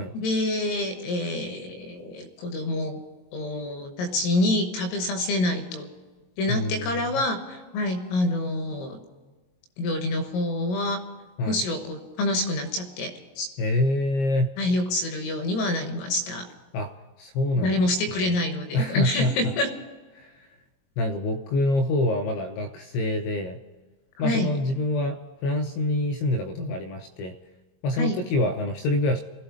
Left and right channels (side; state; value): right; late; 22 ms